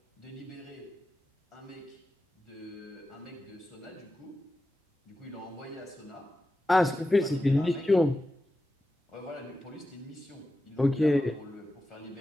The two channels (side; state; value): both; normal; correlation 0.92